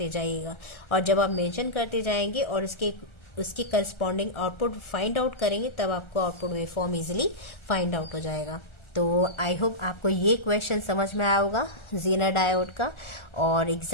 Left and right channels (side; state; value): right; late; 1.3 ms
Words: जाइएगा। और जब आप मेंशन करते जाएंगे और उसके करस्पॉन्डिंग आउटपुट फाइंड आउट करेंगे, तब आपको output wave form easily find out हो जाएगा। तो आई होप आपको ये क्वेश्चन समझ में आया होगा जीनर डायोड का। और